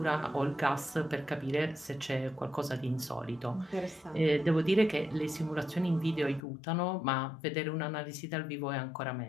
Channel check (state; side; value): drops out; right; at 6.4 s